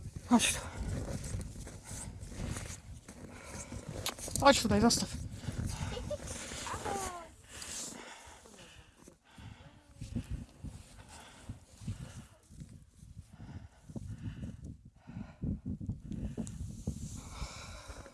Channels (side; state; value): both; identical; correlation 1.00